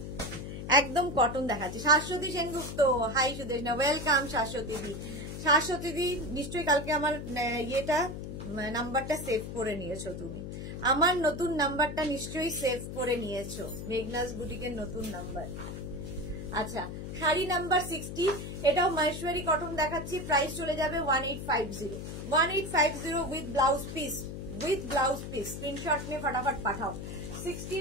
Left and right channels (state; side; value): noise; left; hum, 8 dB below the sound